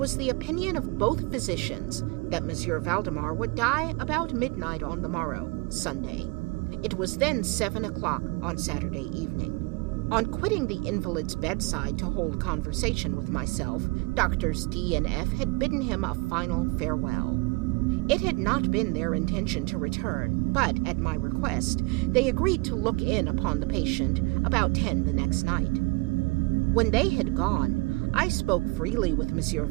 the opinion of both physicians that Monsieur Valdemar would die about midnight on the morrow, Sunday. It was then 7 o'clock on Saturday evening. On quitting the invalid's bedside to hold conversation with myself, Doctors D and F had bidden him a final farewell. It had not been their intention to return, but, at my request, they agreed to look in upon the patient about 10 the next night. When they had gone, I spoke freely with Monsieur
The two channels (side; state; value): left; quieter; 26.2 dB